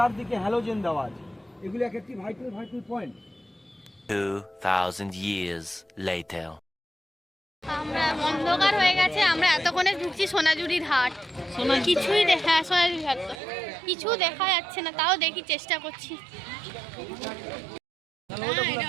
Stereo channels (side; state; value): left; drops out; at 13.4 s